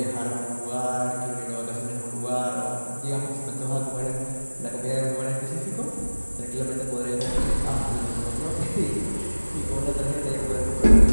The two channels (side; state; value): both; inverted; correlation -1.00